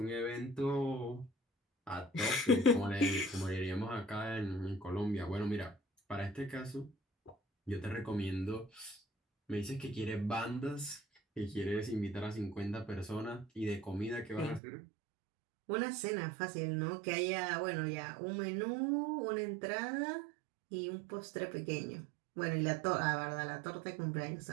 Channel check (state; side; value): drops out; left; at 14.6 s